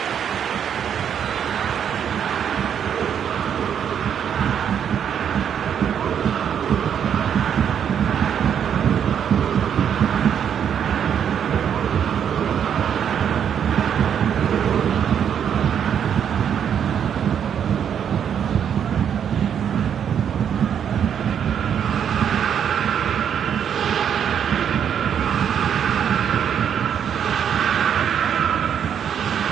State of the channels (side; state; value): left; quieter; 8.5 dB